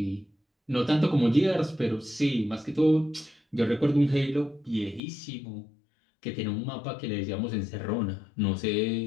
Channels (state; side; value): drops out; right; at 5.0 s